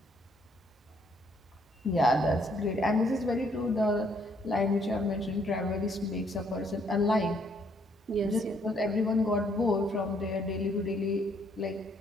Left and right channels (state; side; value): normal; both; correlation 0.68